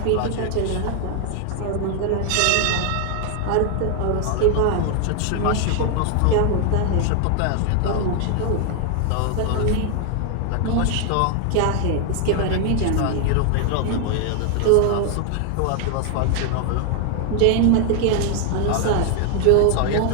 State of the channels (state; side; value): different; both; correlation 0.00